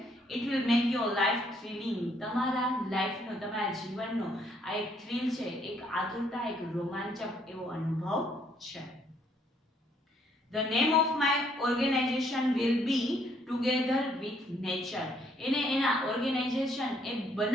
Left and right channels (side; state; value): both; normal; correlation 0.68